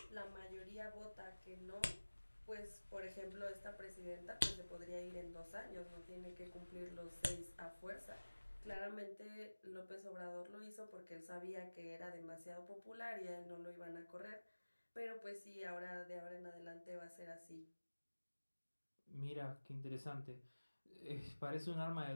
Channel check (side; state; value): both; inverted; correlation -1.00